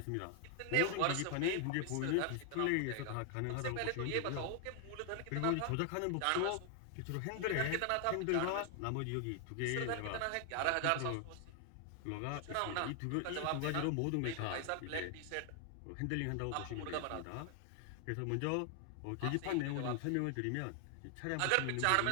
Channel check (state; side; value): different; both; correlation 0.00